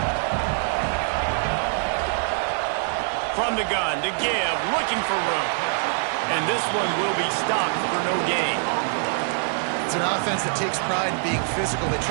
From the gun to give, looking for room. And this one will be stopped for no gain. It's an offense that takes pride in being physical. They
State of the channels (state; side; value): silent; left; 62 dB below the other